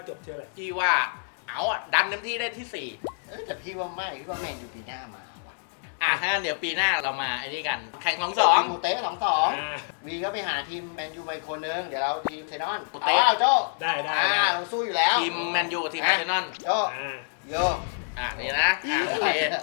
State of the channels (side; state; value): right; silent; digital silence